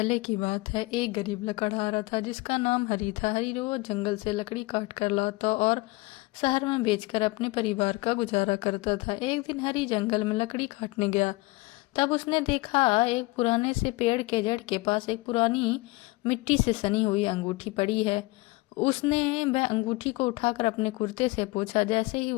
की बात है। एक गरीब लकड़हारा था जिसका नाम हरी था। हरी रोज जंगल से लकड़ी काट कर लाता और शहर में बेचकर अपने परिवार का गुजारा करता था। एक दिन हरी जंगल में लकड़ी काटने गया। तब उसने देखा एक पुराने से पेड़ के जड़ के पास एक पुरानी मिट्टी से सनी हुई अंगूठी पड़ी है। उसने वह अंगूठी को उठाकर अपने कुर्ते से पोंछा। जैसे ही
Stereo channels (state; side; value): quieter; right; 22.7 dB